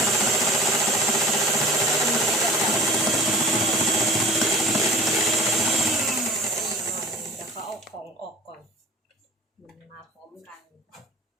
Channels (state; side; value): normal; both; correlation 0.41